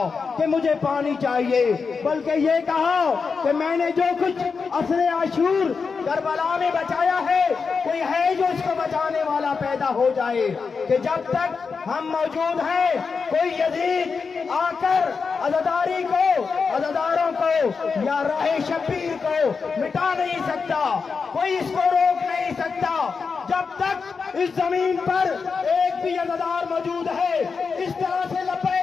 کہ مجھے پانی چاہیے، بلکہ یہ کہا کہ میں نے جو کچھ عصر عاشور کربلا میں بچایا ہے کوئی ہے جو اس کو بچانے والا پیدا ہو جائے، کہ جب تک ہم موجود ہیں کوئی یزید آ کر عزاداری کو، عزاداروں کو یا راہ شبیر کو مٹا نہیں سکتا، کوئی اس کو روک نہیں سکتا۔ جب تک اس زمین پر ایک بھی عزادار موجود ہے اس طرح سے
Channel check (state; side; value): quieter; right; 5.2 dB